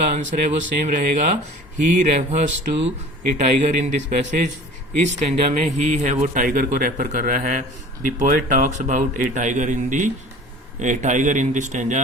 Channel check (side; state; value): both; normal; correlation 0.43